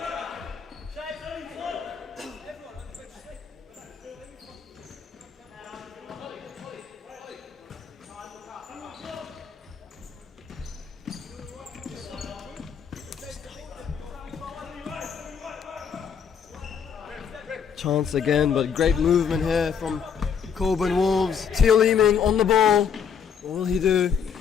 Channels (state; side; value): quieter; right; 7.1 dB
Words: Chance again, but great movement here from Cockburn Wolves. Theo Leeming on the ball. What will he do?